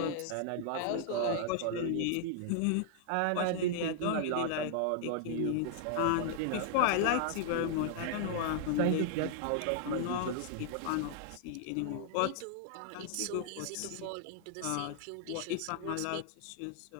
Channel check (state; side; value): different; both; correlation -0.01